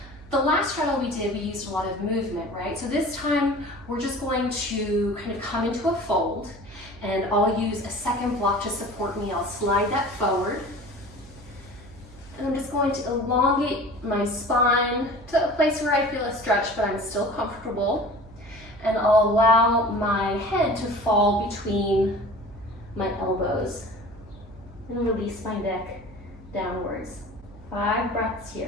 the last straddle we did, we used a lot of movement, right? So this time, we're just going to kind of come into a fold, and I'll use a second block to support me. I'll slide that forward. And I'm just going to elongate my spine to a place where I feel a stretch, but I'm still comfortable. And I'll allow my head to fall between my elbows. And release my neck downwards. 5 breaths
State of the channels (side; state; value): right; noise; hum, 20 dB below the sound